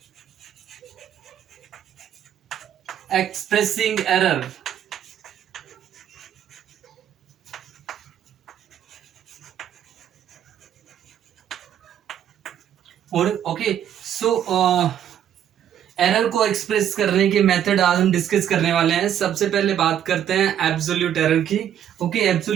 expressing error. और error को express करने के method आज हम discuss करने वाले हैं। सबसे पहले बात करते हैं एब्सोल्यूट एरर की।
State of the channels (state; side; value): quieter; left; 10.0 dB